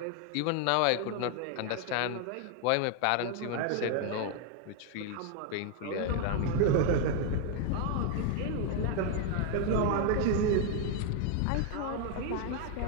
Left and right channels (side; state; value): both; different; correlation 0.00